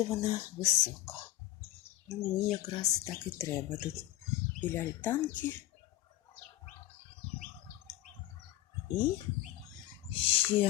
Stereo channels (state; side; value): quieter; right; 14.4 dB